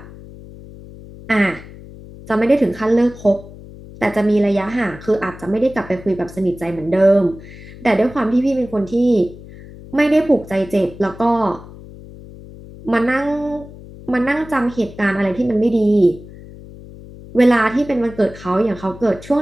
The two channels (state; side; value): noise; left; hum, 17 dB below the sound